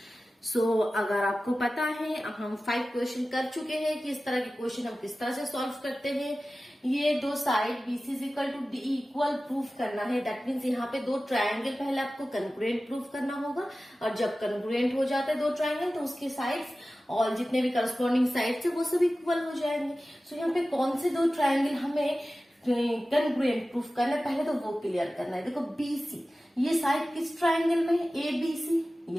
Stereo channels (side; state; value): both; normal; correlation 0.96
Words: सो अगर आपको पता है, हम 5 क्वेश्चन कर चुके हैं कि इस तरह के क्वेश्चन हम किस तरह से सॉल्व करते हैं। ये दो side B C is equal to D equal proof करना है। दैट मीन्स यहाँ पे दो ट्रायंगल पहले आपको कंग्रुएंट प्रूफ करना होगा, और जब कंग्रुएंट हो जाता है दो ट्रायंगल तो उसके साइड्स और जितने भी करस्पॉन्डिंग साइड्स है वो सब इक्वल हो जाएंगे। सो यहाँ पे कौन से दो ट्रायंगल हमें कंग्रुएंट प्रूफ करना है, पहले तो वो क्लियर करना है। देखो बीसी ये साइड किस ट्रायंगल में है? A B C.